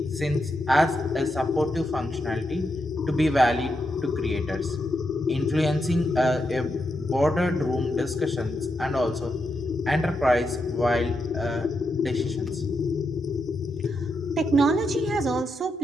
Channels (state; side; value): normal; both; correlation 0.84